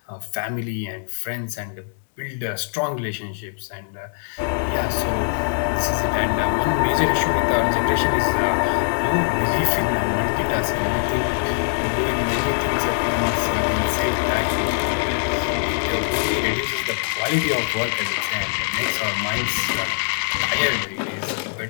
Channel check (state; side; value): silent; right; digital silence